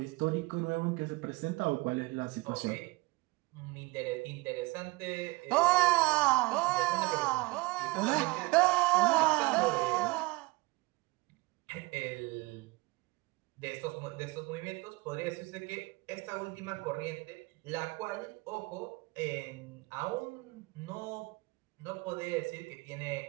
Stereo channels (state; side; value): quieter; left; 23.3 dB